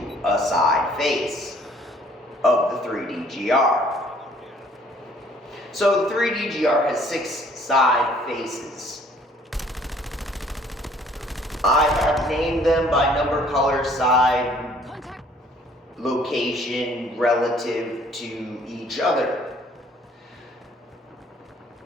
a side face of the 3DGR. So the 3DGR has 6 side faces. I have named them by number, color, side, location relative to each other.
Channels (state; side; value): normal; both; correlation 0.58